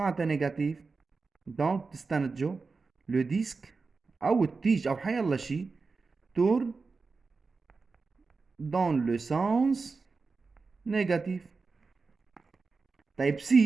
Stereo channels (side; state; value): left; quieter; 4.3 dB